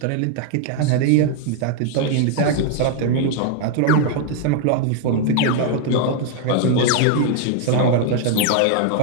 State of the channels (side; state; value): both; different; correlation 0.00